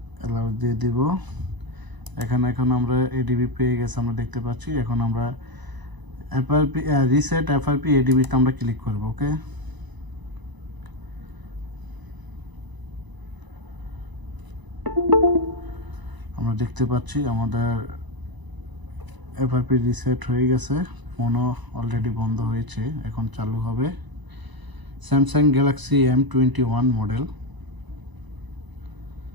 অ্যালাউ দিয়ে দিব। এখানে এখন আমরা এডিবি পেয়ে গেছে, আমরা দেখতে পাচ্ছি। এখন আমরা এফআরপি রিসেট এফআরপি এডিবিতে আমরা ক্লিক করব। ওকে, আমরা দেখতে পাচ্ছি আমাদের এফআরপি রিসেট হয়ে গেছে। ফোনও অলরেডি বন্ধ হয়েছে, এখন চালু হবে। Samsung Galaxy M21 model.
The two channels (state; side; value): late; left; 1.0 ms